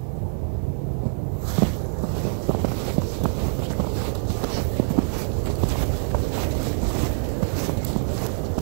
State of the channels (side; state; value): left; silent; digital silence